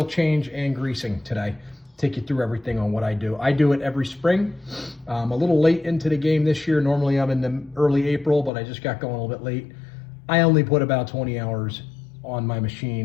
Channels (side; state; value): right; drops out; at 8.5 s